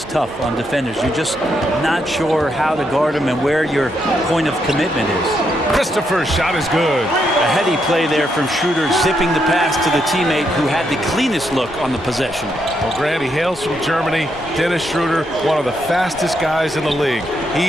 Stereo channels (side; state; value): both; normal; correlation 0.79